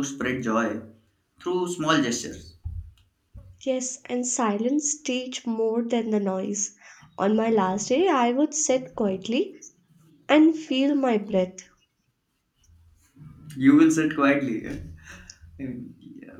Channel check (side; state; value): both; identical; correlation 1.00